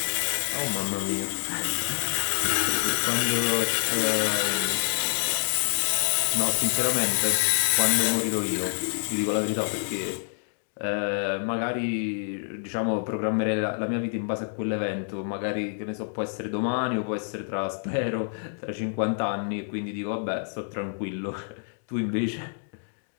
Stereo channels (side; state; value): right; silent; digital silence